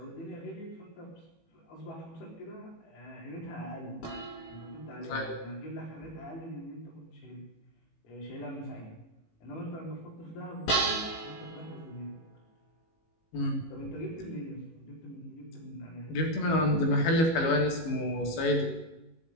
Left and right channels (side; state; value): right; late; 18 ms